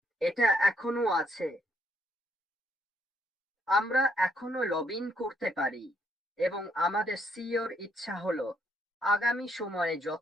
এটা এখনো আছে। আমরা এখনো লগ ইন করতে পারি, এবং আমাদের সিইওর ইচ্ছা হলো আগামী সময়ে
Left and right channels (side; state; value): both; normal; correlation 0.71